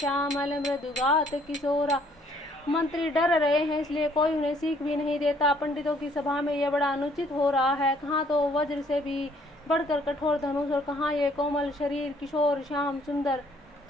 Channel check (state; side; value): normal; both; correlation 0.63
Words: मृदुगात किशोरा। मंत्री डर रहे हैं, इसलिए कोई उन्हें सीख भी नहीं देता। पंडितों की सभा में यह बड़ा अनुचित हो रहा है। कहाँ तो वज्र से भी बढ़कर कठोर धनुष, और कहाँ ये कोमल शरीर किशोर श्याम सुंदर।